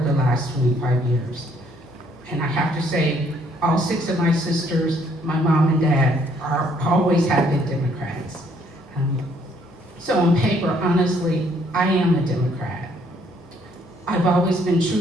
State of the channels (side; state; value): both; normal; correlation 0.66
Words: the last 25 years. And I have to say, all 6 of my sisters, my mom and dad, always have been Democrats. So on paper, honestly, I am a Democrat. I've always been